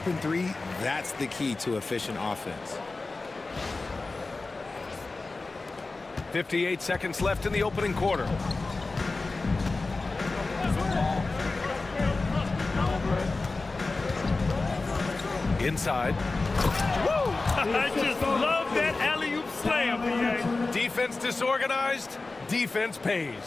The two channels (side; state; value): right; quieter; 3.5 dB